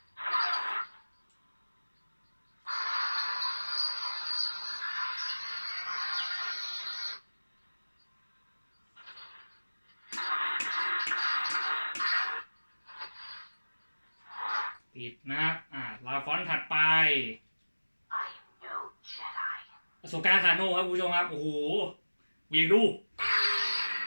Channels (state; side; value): inverted; both; correlation -1.00